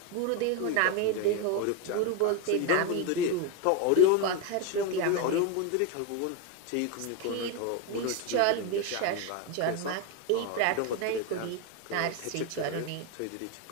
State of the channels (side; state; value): both; different; correlation 0.02